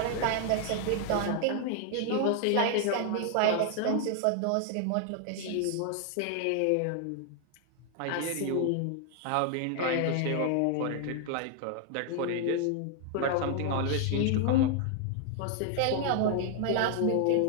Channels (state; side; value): different; both; correlation 0.00